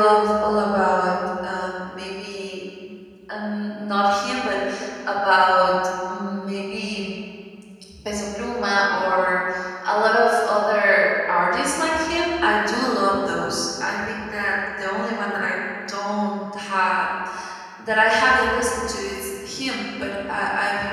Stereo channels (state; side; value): identical; both; correlation 1.00